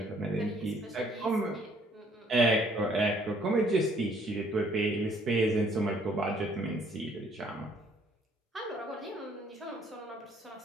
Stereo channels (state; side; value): normal; both; correlation 0.63